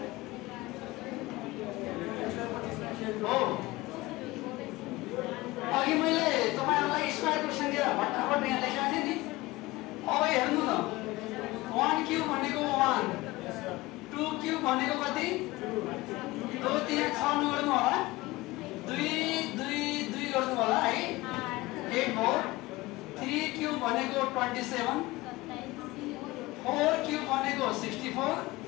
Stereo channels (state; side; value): quieter; right; 20.0 dB